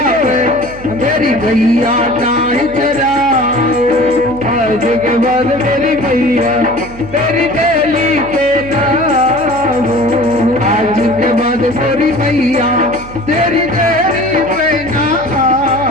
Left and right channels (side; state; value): right; noise; hum, 16 dB below the sound